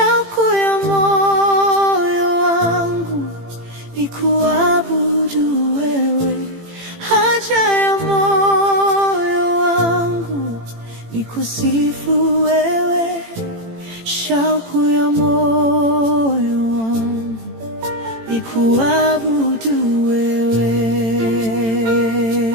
ya moyo wangu ni kuabudu wewe. Haja ya moyo wangu ni kusifu wewe, shauku ya moyo wangu ni kuabudu wewe.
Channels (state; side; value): late; left; 18 ms